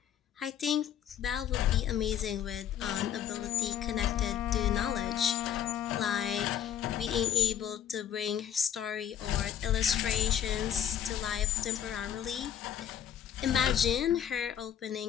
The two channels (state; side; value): quieter; right; 9.6 dB